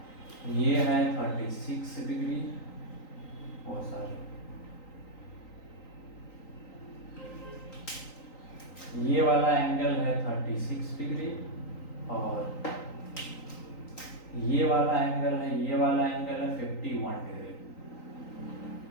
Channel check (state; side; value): late; right; 3.9 ms